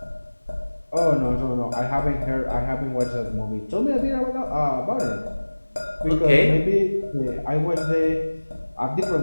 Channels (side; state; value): both; inverted; correlation -1.00